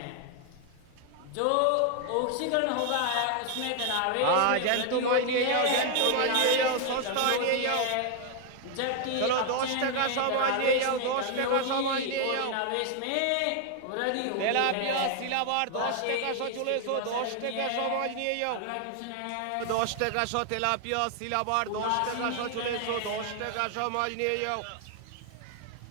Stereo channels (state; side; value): different; both; correlation 0.00